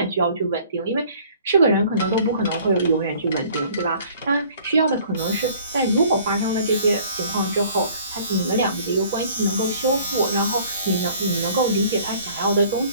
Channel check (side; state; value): both; inverted; correlation -0.53